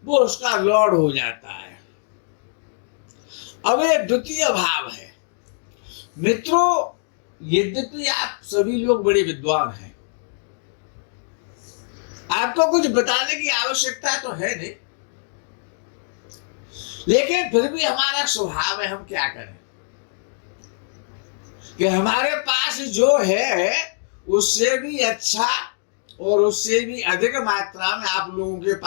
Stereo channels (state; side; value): silent; right; digital silence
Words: वो उसका लॉर्ड हो जाता है। अब ये द्वितीय भाव है। मित्रों, यद्यपि आप सभी लोग बड़े विद्वान हैं, आपको कुछ बताने की आवश्यकता तो है नहीं, लेकिन फिर भी हमारा स्वभाव है, हम क्या करें कि हमारे पास जो है उससे भी अच्छा और उससे भी अधिक मात्रा में आप लोगों के